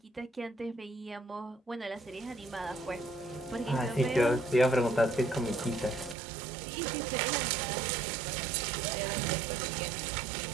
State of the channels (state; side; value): drops out; left; at 6.2 s